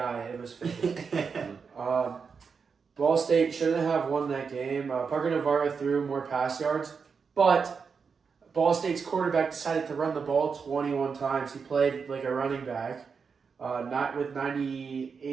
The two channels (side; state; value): left; quieter; 5.7 dB